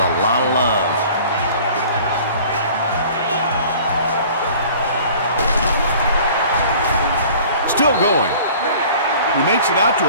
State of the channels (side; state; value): both; inverted; correlation -0.47